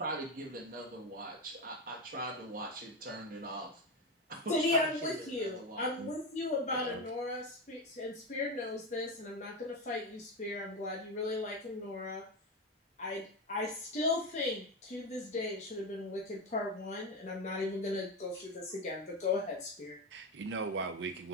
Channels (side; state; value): both; normal; correlation 0.16